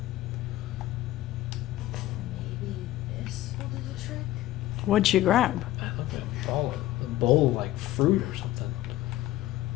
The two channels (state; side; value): quieter; right; 15.3 dB